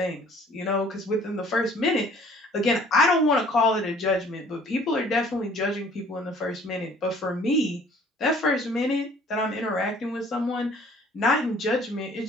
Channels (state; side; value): normal; both; correlation 0.55